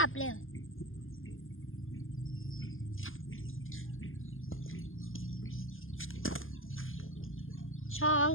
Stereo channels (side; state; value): right; late; 0.59 ms